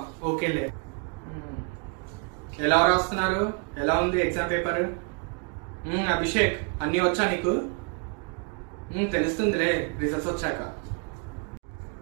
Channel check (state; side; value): quieter; left; 36.1 dB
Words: ఓకేలే. ఎలా రాస్తున్నారు? ఎలా ఉంది ఎగ్జామ్ పేపర్? అభిషేక్ అన్ని వచ్చా నీకు? తెలుస్తుందిలే రిజల్ట్స్ వచ్చాక.